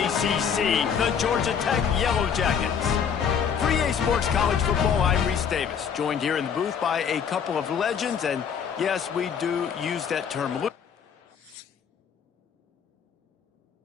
the Georgia Tech Yellow Jackets. For EA Sports College Football, I'm Reese Davis, joined here in the booth by a couple of legends, and yes, we do use that term loosely.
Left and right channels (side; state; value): right; quieter; 7.4 dB